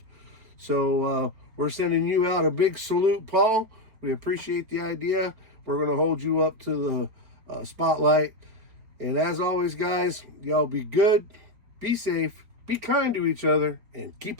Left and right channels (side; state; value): left; late; 4.5 ms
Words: So we're sending you out a big salute, Paul. We appreciate the idea. We're going to hold you up to the spotlight. And as always, guys, y'all be good, be safe, be kind to each other, and keep